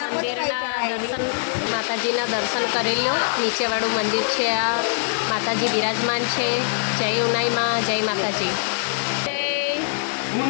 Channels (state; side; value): silent; right; digital silence